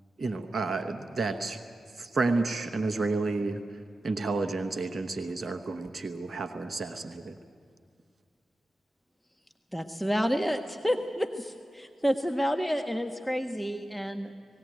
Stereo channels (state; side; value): normal; both; correlation 0.93